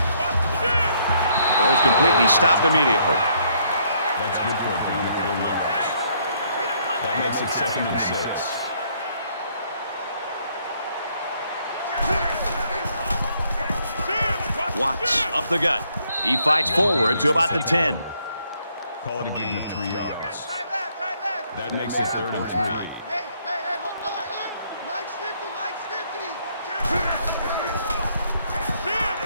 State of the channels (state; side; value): inverted; both; correlation -0.69